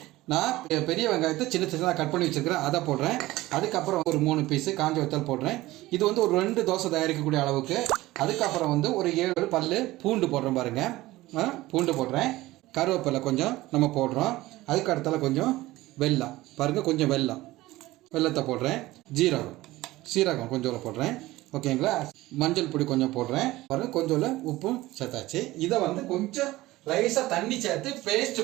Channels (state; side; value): quieter; left; 17.9 dB